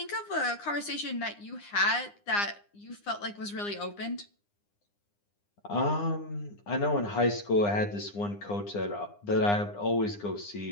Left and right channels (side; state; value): right; late; 9.8 ms